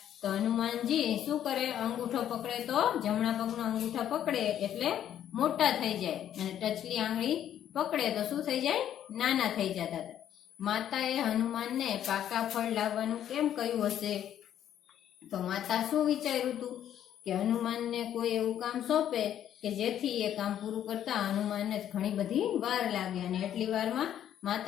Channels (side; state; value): right; quieter; 10.6 dB